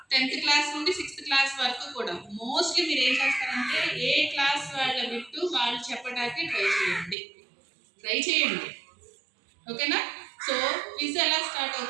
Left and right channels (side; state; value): left; drops out; at 7.2 s